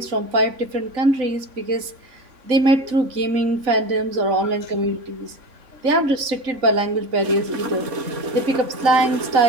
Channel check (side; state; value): left; late; 3.6 ms